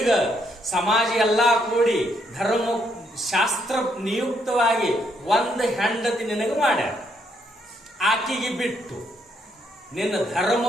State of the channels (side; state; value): both; normal; correlation 0.74